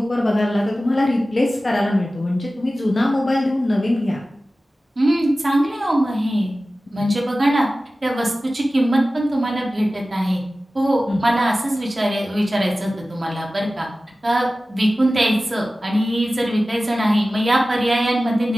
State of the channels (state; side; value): normal; both; correlation 0.96